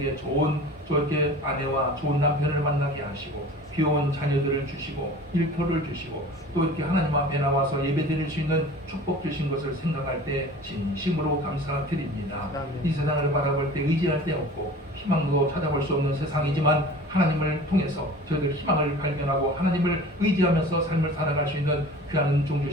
좋은 저렇게 아내와 좋은 남편을 만나게 하시고 귀여운 자녀들을 주시고 일터를 주시고 또 이렇게 하나님 앞에 나와서 예배드릴 수 있는 축복 주신 것을 생각할 때 진심으로 감사드립니다. 이 세상을 바라볼 때 의지할 데 없고 희망도 찾아볼 수 없는 세상이지만 하나님을 통해서 저희들 희망을 발견하고 하나님을 의지하면서 삶을 살아갈 수 있는 귀한 은총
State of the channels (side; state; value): both; normal; correlation 0.41